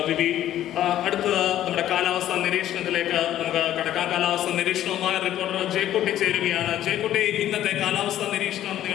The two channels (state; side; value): quieter; right; 12.3 dB